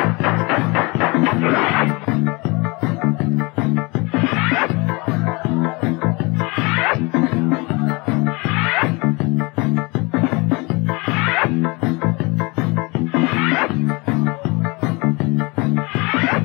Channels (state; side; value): quieter; right; 27.1 dB